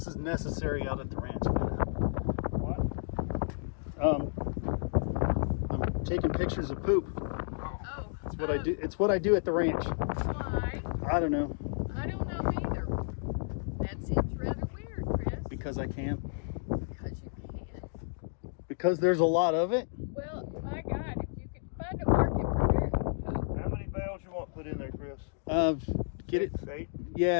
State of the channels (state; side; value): silent; right; digital silence